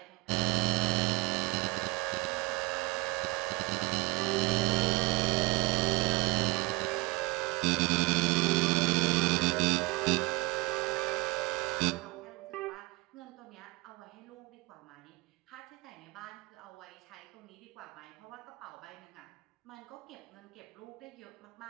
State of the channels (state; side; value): quieter; left; 23.8 dB